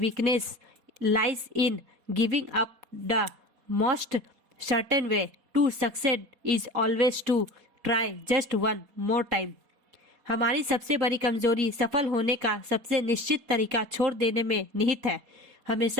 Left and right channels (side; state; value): left; late; 4.2 ms